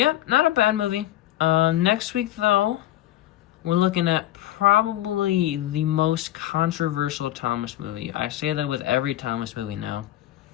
not a bad movie. Next week though, we're looking at probably the most controversial Thomas movie. I say that with every Thomas movie now,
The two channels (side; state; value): right; quieter; 14.2 dB